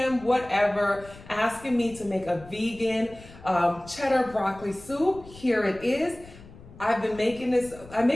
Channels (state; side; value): noise; left; rumble, 20 dB below the sound